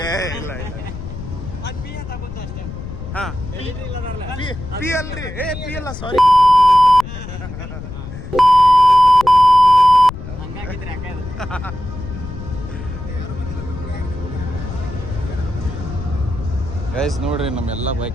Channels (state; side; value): noise; left; rumble, 10 dB below the sound